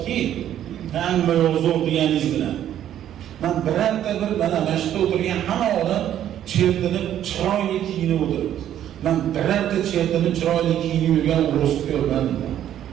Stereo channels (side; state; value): left; quieter; 11.0 dB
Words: hamma yo'q deganingiz bilan. Men birorta bir mana mashqda o'tirgan hamma odam chertinib chiroyli kiyinib o'tiribdi. Men birorta chertinib chiroyli kiyinib yurgan o'risni ko'rmadim.